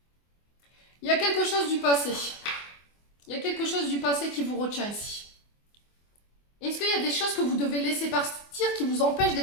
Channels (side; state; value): right; late; 24 ms